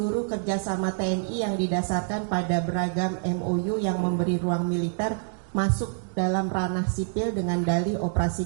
kerjasama TNI yang didasarkan pada beragam MOU yang memberi ruang militer masuk dalam ranah sipil dengan dalih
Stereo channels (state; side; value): silent; left; digital silence